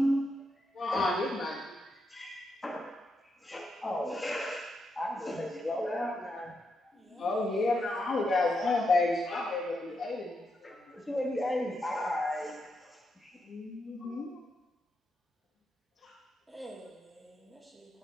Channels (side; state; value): both; normal; correlation 0.83